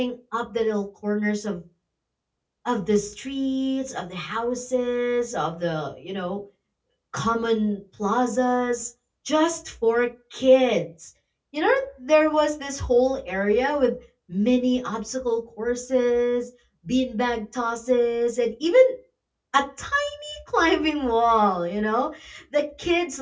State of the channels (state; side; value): identical; both; correlation 1.00